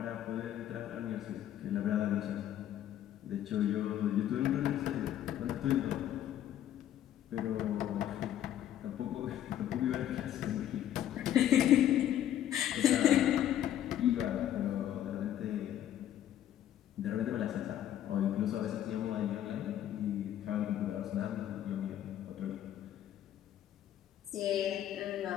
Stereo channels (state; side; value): quieter; right; 11.4 dB